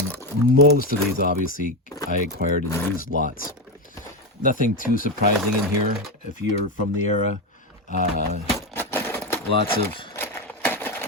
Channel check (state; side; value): normal; both; correlation 0.13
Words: most of these obviously I acquired in used lots. Nothing too surprising in here if you're from the era. Lots of